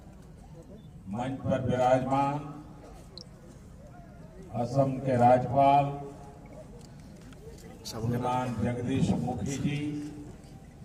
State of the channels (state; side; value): identical; both; correlation 1.00